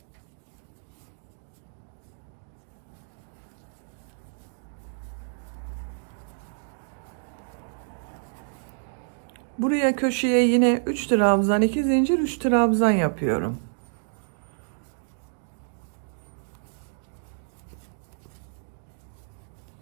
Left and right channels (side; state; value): left; silent; digital silence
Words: Buraya köşeye yine 3 trabzan, 2 zincir, 3 trabzan yapıyorum.